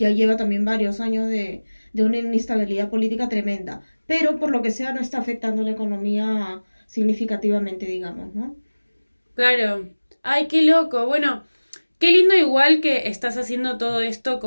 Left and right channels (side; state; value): both; inverted; correlation -1.00